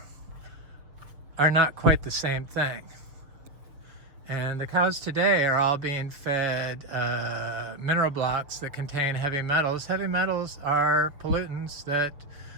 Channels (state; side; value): late; left; 6.7 ms